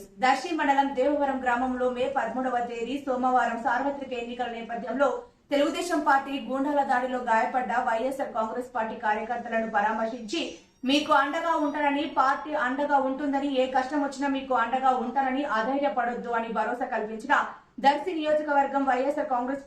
దర్శి మండలం దేవవరం గ్రామంలో మే 13వ తేదీ సోమవారం సార్వత్రిక ఎన్నికల నేపథ్యంలో తెలుగుదేశం పార్టీ గూండాల దాడిలో గాయపడ్డ వైఎస్ఆర్ కాంగ్రెస్ పార్టీ కార్యకర్తలను పరామర్శించి మీకు అండగా ఉంటానని, పార్టీ అండగా ఉంటుందని, ఏ కష్టం వచ్చినా మీకు అండగా ఉంటానని, అధైర్యపడొద్దు అని భరోసా కల్పించిన దర్శి నియోజకవర్గం వైఎస్ఆర్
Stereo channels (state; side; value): identical; both; correlation 1.00